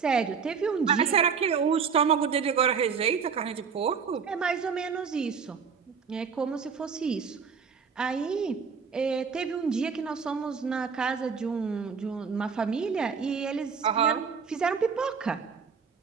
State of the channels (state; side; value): quieter; left; 6.1 dB